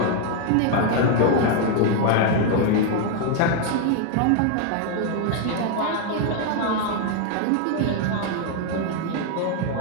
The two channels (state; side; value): different; both; correlation 0.00